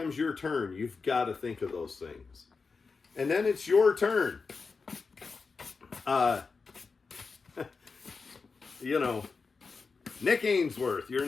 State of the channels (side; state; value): right; quieter; 4.7 dB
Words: your turn, you've got to think of those things. And then it's your turn. Nick Ainsworth, you're